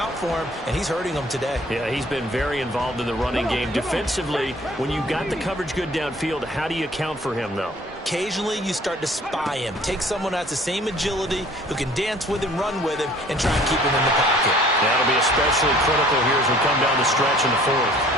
for him, and he's hurting them today. Yeah, he's been very involved in the running game. Defensively, when you've got the coverage good downfield, how do you account for him, though? Occasionally, you start to spy him. Take someone who has the same agility, who can dance with him, run with him, and try and keep him in the pocket. That'll be especially critical here as we come down the stretch in the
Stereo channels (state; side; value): normal; both; correlation 0.53